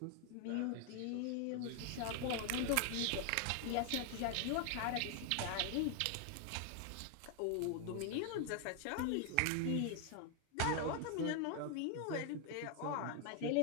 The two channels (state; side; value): different; both; correlation 0.00